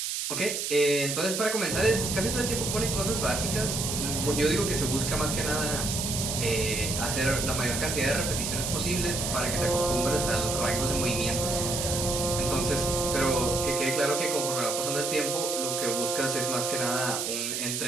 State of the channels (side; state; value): right; noise; hiss, 2 dB below the sound